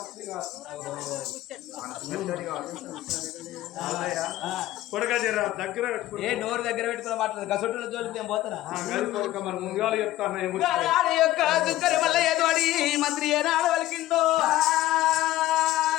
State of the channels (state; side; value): quieter; right; 15.3 dB